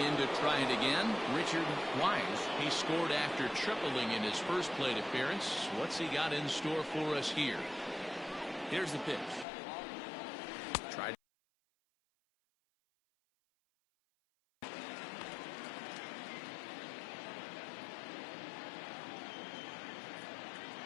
to try it again, Richard Wise. He scored after tripling in his first plate appearance. What's he got in store for us here? Here's the pitch. Tried.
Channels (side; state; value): right; drops out; at 9.5 s